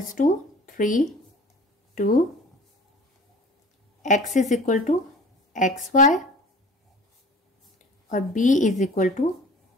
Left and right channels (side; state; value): both; normal; correlation 0.45